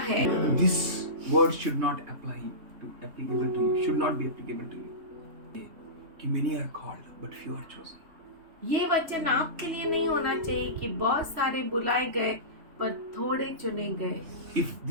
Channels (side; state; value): left; late; 3.3 ms